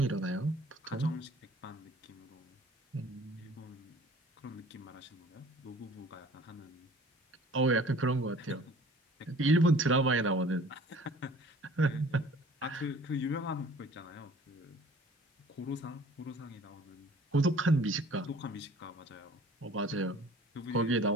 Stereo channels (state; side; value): normal; both; correlation 0.50